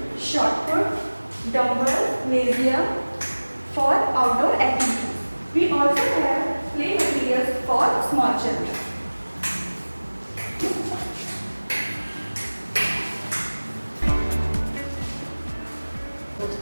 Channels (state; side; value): inverted; both; correlation -1.00